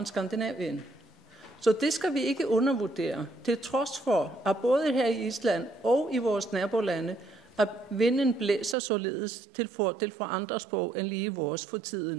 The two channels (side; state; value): left; drops out; at 8.8 s